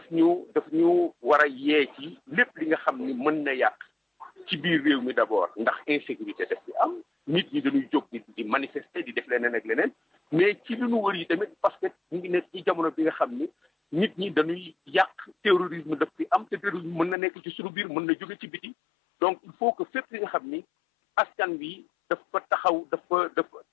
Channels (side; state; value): right; drops out; at 17.2 s